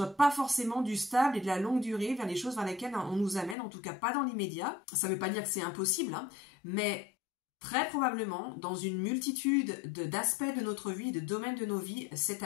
pas forcément du stable et de la longue durée vers les choses vers lesquelles on nous amène, en tout cas pas dans l'immédiat. Ça veut pas dire que c'est impossible, hein, mais très probablement dans une multitude d'aspects de notre vie, de domaines de nos vies cette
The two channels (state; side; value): drops out; right; at 3.6 s